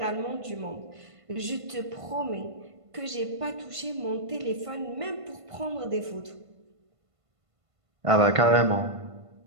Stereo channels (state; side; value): late; left; 1.5 ms